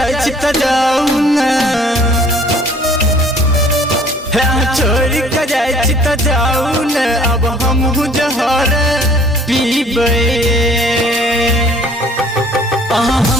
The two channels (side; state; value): both; normal; correlation 0.54